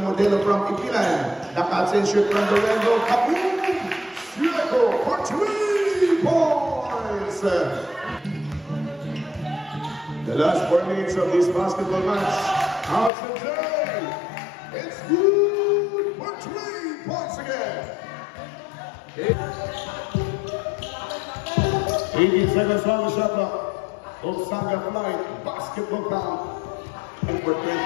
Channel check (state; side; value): drops out; right; at 13.1 s